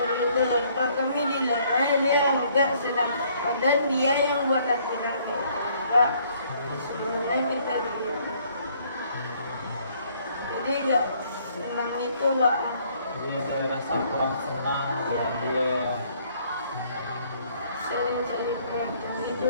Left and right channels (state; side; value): inverted; both; correlation -0.63